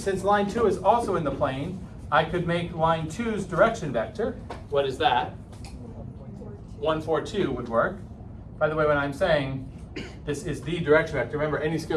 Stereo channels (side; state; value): both; identical; correlation 1.00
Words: line 2 is also in the plane, I could make line 2's direction vector. What is that? 142 would work. By the way, when I'm saying this is the direction vector, remember any